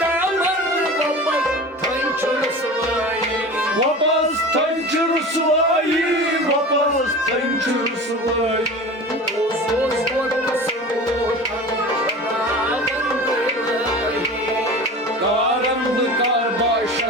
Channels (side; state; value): both; normal; correlation 0.34